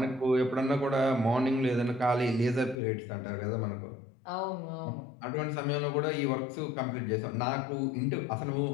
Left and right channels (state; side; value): drops out; right; at 2.8 s